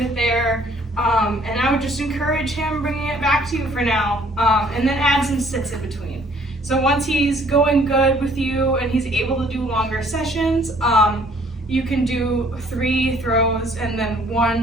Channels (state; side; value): normal; both; correlation 0.60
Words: it there. And I would just encourage him bringing it back to you for now, and then add some sits in between. So once he's going good with you and he's able to do longer sessions, you can do 3 throws and then